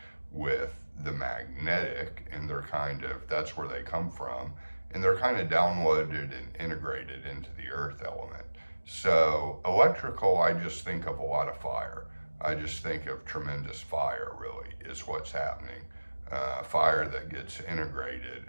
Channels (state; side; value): inverted; both; correlation -1.00